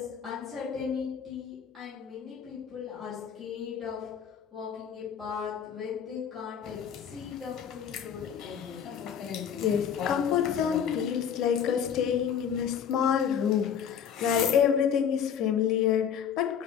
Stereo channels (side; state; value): right; quieter; 8.1 dB